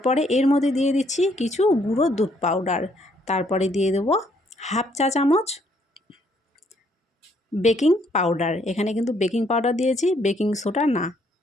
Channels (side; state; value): both; normal; correlation 0.68